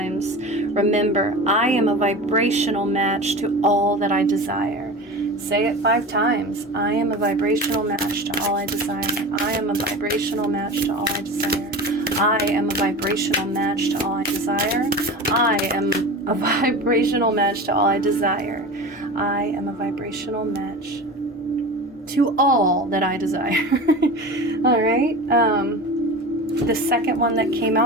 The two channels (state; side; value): normal; both; correlation 0.31